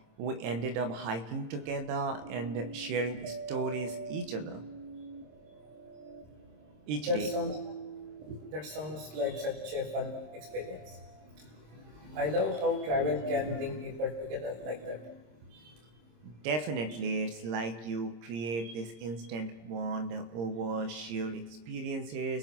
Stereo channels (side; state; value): left; late; 26 ms